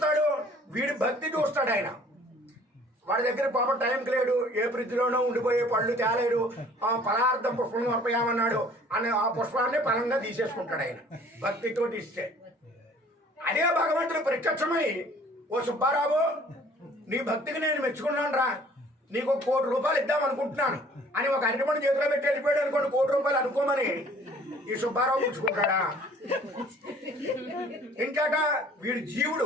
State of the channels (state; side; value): normal; both; correlation 0.53